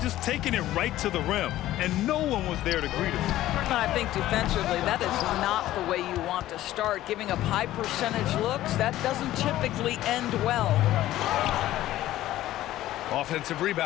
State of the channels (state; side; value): quieter; right; 14.5 dB